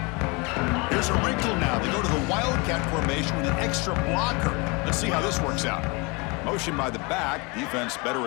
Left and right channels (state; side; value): quieter; right; 28.4 dB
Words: There's a wrinkle now. They go to the Wildcat formation with an extra blocker. Let's see how this works out. Motion by the back. Defense better